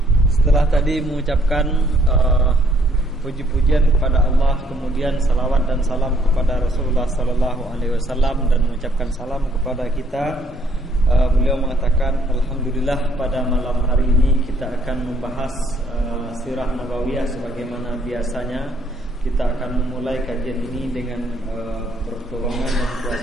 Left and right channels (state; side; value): normal; both; correlation 0.66